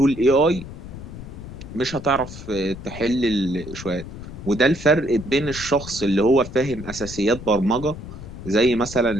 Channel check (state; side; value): noise; left; rumble, 12 dB below the sound